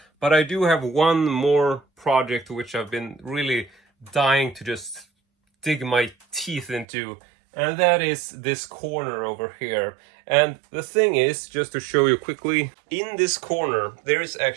But I do have one more project which I've been really dying to just dig my teeth into. And that is this corner over here. And the thing is, just to show you quickly, in this corner there is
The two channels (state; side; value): drops out; left; at 6.9 s